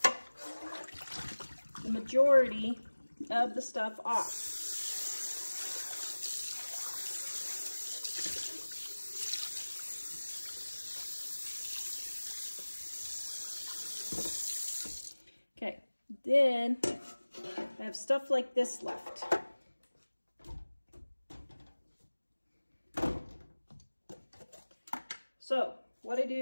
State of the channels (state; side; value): inverted; both; correlation -1.00